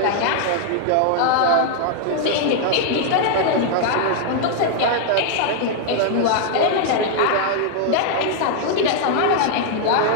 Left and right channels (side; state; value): both; different; correlation 0.00